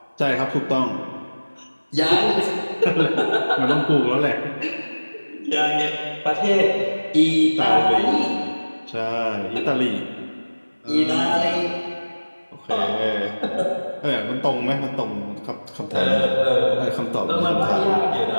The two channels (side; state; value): both; inverted; correlation -1.00